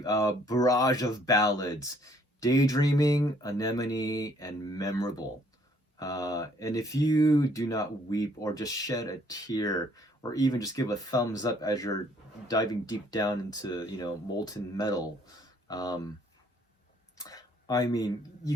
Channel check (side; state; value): both; normal; correlation 0.63